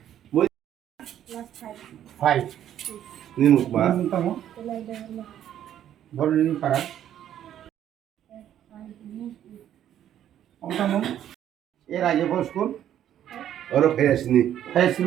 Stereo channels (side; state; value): left; quieter; 10.8 dB